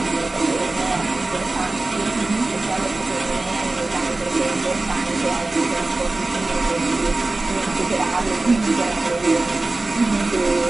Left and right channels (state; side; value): quieter; left; 3.1 dB